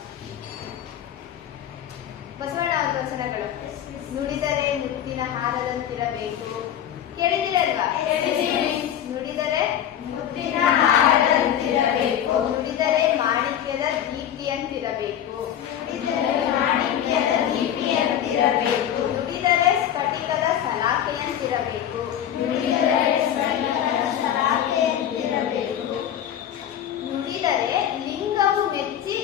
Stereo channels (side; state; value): right; quieter; 10.3 dB